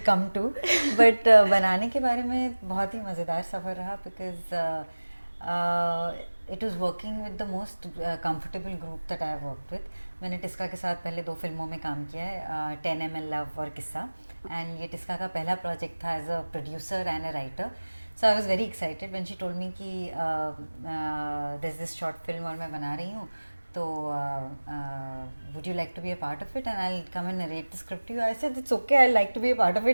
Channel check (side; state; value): both; inverted; correlation -1.00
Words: come to, but बनाने के बारे में बहुत ही मज़ेदार सफ़र रहा because it was working with the most comfortable group that I have worked with. मैंने टिस्का के साथ पहले 2 फिल्मों में काम किया है, 10 ml लव और किस्सा, एंड ये टिस्का का पहला प्रोजेक्ट था as a producer and a writer. So I was very excited when she told me कि दिस दिस शॉर्ट फिल्म और मैं बना रही हूँ, तो would you like to be a part of it and I'll come and narrate the script to you. I said it's okay, I'd like to be a part of